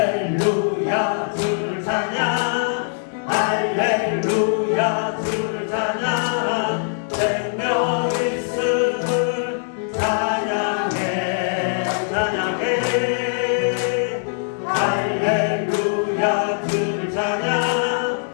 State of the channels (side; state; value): right; silent; 64 dB below the other